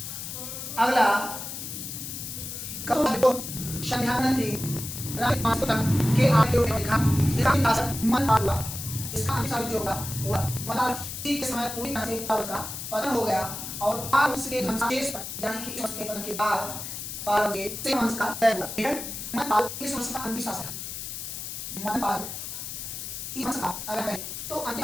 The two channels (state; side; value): noise; left; hiss, 7 dB below the sound